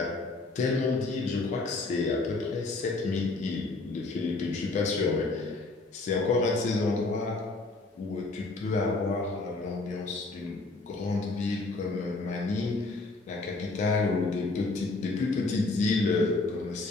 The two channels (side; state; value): right; quieter; 3.4 dB